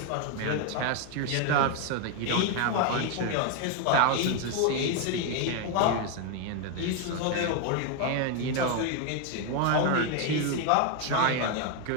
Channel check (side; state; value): both; different; correlation 0.01